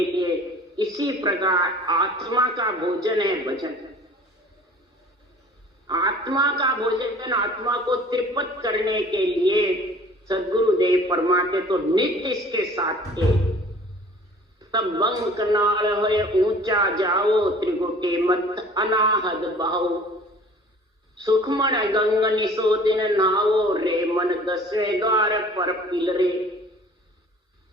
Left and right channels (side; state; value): both; normal; correlation 0.48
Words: लिए, इसी प्रकार आत्मा का भोजन है भजन। आत्मा का भोजन आत्मा को त्रिपत करने के लिए सदगुरुदेव फरमाते तो नित्य इसके साथ थे। तब बंग कनाल होए ऊंचा जाओ, त्रिगुटी मत अनाहद बहाओ, सुखमन गंग निसो दिन नाओ, रे मन दसवें द्वार पर पिलरे।